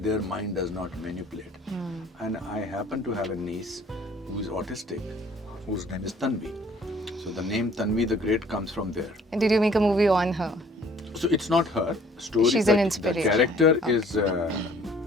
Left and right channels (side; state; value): both; normal; correlation 0.55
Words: mind does not manipulate. And I happen to have a niece who is autistic, whose name is Tanvi. So the name Tanvi The Great comes from there. And did you make a movie on her? So it's not her story. She's an inspiration. The character is